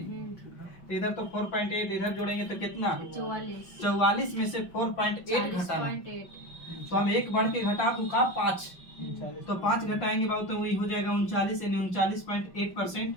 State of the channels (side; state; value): right; late; 5.4 ms